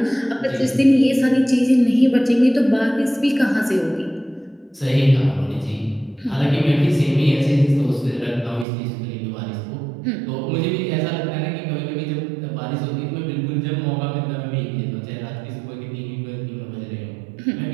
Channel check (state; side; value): drops out; left; at 8.7 s